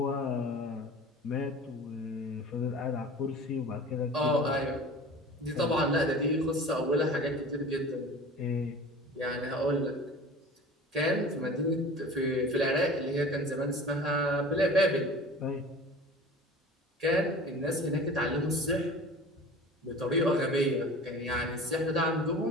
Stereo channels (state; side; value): normal; both; correlation 0.40